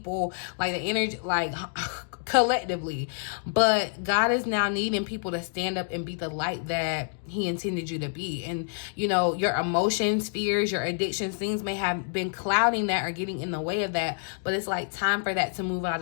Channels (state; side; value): silent; right; digital silence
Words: like the energy, like collectively. But God is now needing people to stand up and be the light that he intended you to be. And, you know, your emotions, fears, your addictions, things may have been clouding that or getting in the way of that. But it's like time for that to move out